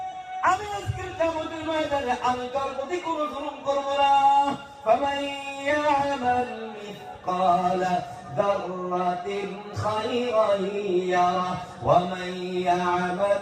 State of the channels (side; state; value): both; identical; correlation 1.00